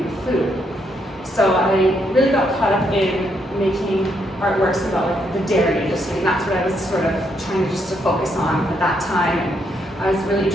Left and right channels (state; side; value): normal; both; correlation 0.76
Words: food. So I really got caught up in making artworks about like the dairy industry, and that's what I was sort of trying to focus on at that time. And I was really